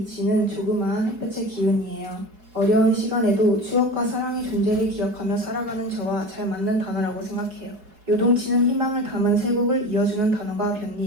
조그마한 햇볕의 기운이에요. 어려운 시간에도 추억과 사랑의 존재를 기억하며 살아가는 저와 잘 맞는 단어라고 생각해요. 요동치는 희망을 담은 세 곡을 이어주는 단어가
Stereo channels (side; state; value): left; late; 4.6 ms